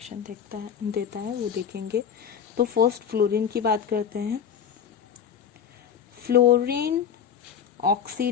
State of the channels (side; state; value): right; quieter; 7.9 dB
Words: देता है वो देखेंगे। तो फर्स्ट फ्लोरीन की बात करते हैं। Fluorine